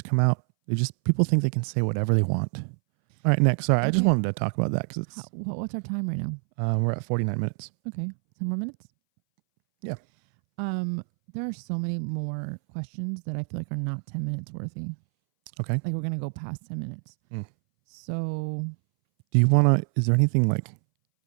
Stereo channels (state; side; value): silent; left; 61 dB below the other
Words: come out. People think they can say whatever they want. All right, next. Sorry, I just wanted to talk about that. Because what's our time right now? We're at 49 minutes. Okay. 10 more minutes. Yeah. There are so many more questions that I feel like are not 10 minutes worthy. Okay. Like we're going to go past 10 minutes. So do you want to, is there anything like